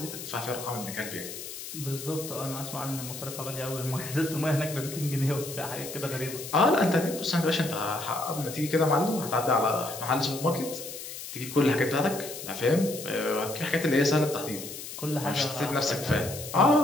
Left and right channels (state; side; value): noise; left; hiss, 10 dB below the sound